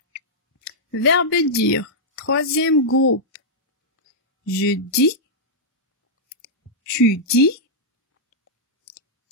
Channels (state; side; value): normal; both; correlation -0.08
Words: Verbe dire. Troisième groupe. Je dis. Tu dis.